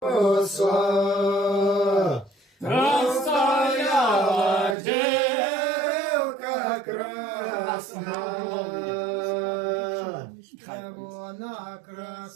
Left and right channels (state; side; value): drops out; left; at 4.8 s